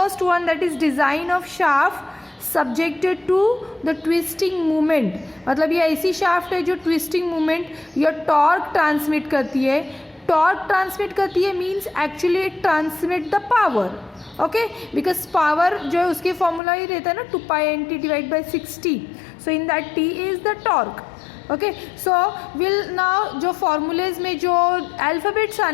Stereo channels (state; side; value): drops out; right; at 16.6 s